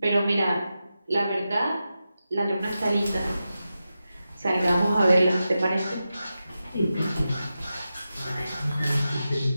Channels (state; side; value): inverted; both; correlation -0.91